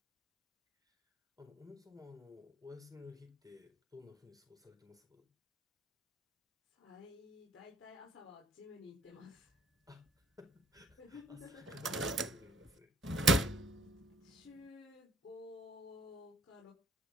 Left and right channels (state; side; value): normal; both; correlation 0.59